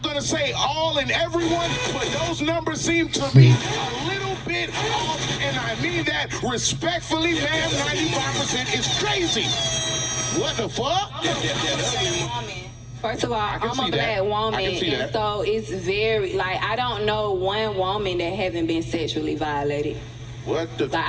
gonna say all and everyone, but those numbers seem to be a little bit off, and I mean that respectfully, ma'am. 95% is crazy. What the fuck? First of all, can I'm see a black that. woman, I can see and that. so it's very like I don't know one woman that haven't been sexually violated. What the? Like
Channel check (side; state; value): both; identical; correlation 1.00